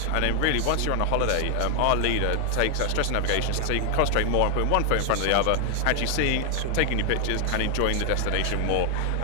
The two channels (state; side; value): different; both; correlation 0.00